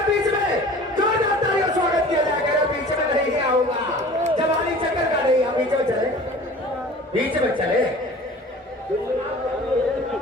बीच में, जो जाता है स्वागत किया जाएगा। बीच में नहीं आऊंगा, जवानी चक्कर का नहीं। आप बीच में चले, बीच में चले,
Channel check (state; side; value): normal; both; correlation 0.43